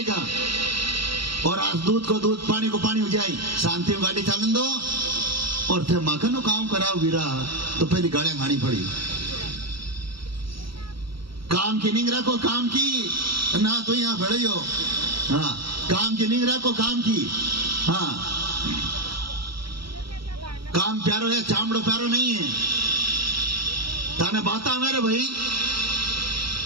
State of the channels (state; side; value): late; left; 0.75 ms